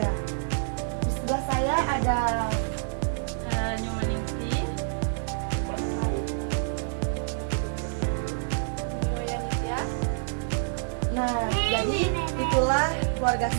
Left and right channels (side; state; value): left; silent; digital silence